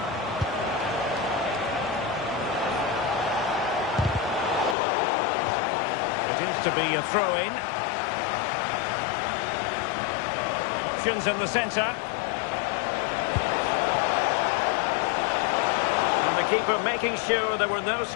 To be a throw-in. Options in the centre. And the keeper making sure there were no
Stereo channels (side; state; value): right; drops out; at 4.8 s